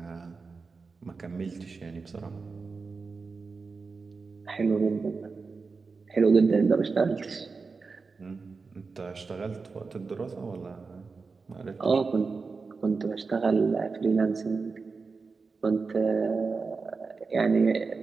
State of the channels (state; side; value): quieter; left; 4.5 dB